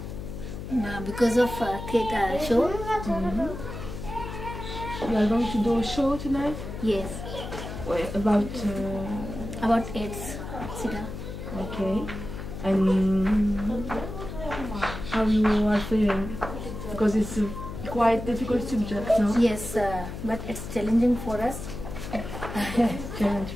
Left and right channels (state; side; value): noise; left; hum, 8 dB below the sound